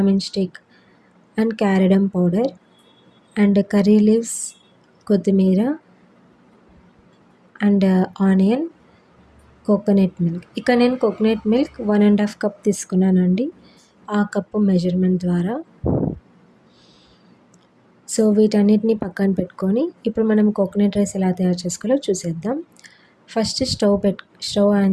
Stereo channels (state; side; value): identical; both; correlation 1.00